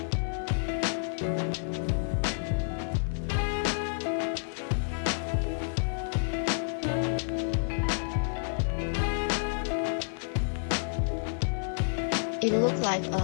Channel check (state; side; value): silent; right; 58 dB below the other